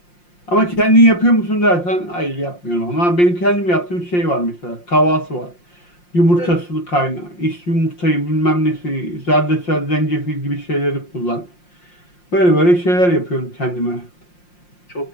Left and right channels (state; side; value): late; right; 5.7 ms